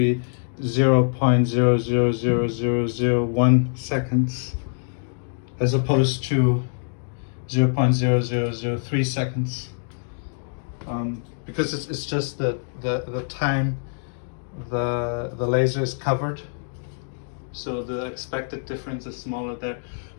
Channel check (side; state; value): right; silent; digital silence